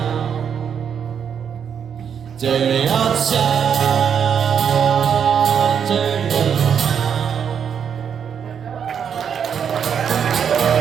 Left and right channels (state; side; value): quieter; left; 7.7 dB